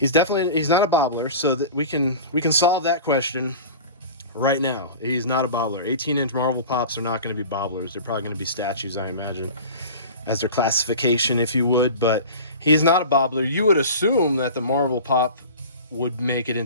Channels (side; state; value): both; inverted; correlation -0.36